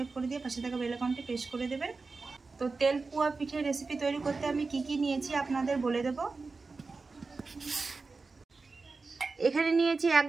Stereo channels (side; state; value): left; quieter; 4.1 dB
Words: करे दिये पाशे थाका बेल आइकनटी प्रेस करे देबेन। तो तेल पुआ पिठे रेसिपि तैरी करते आमी कि नियेछि आपनादेर बोले देबो। एखाने नियेछि